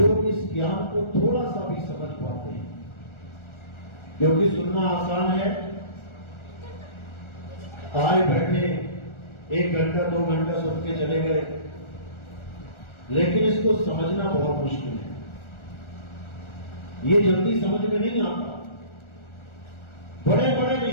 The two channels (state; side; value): late; right; 1.4 ms